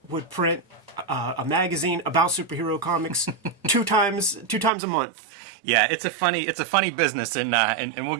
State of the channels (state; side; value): drops out; left; at 4.7 s